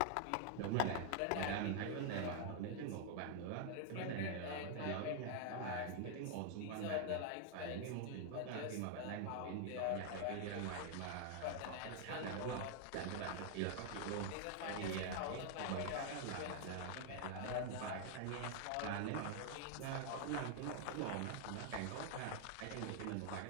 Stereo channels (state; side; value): different; both; correlation 0.00